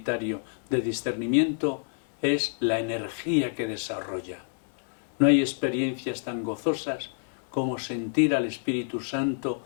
de discernimiento es la energía que desarrolla. No hay experiencias tan gozosas como sentir al Espíritu Santo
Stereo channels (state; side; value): silent; right; digital silence